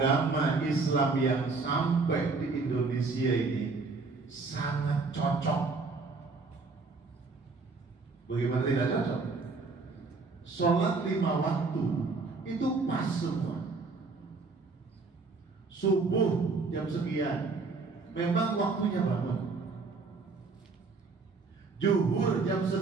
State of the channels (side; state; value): left; quieter; 4.1 dB